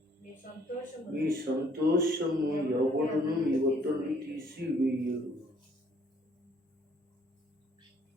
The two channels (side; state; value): both; normal; correlation 0.62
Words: మీ సంతోషము ఎవడును మీ ఒత్తిడి తీసివేయడు.